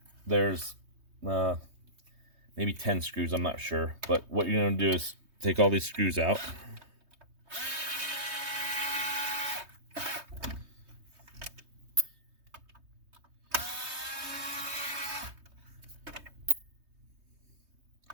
There's maybe 10 screws, I'm not sure, but what you're going to do is take all these screws out.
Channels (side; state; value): left; late; 3.2 ms